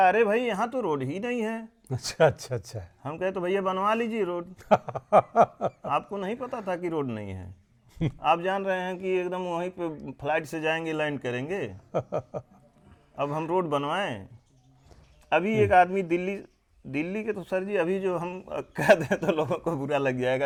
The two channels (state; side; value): identical; both; correlation 1.00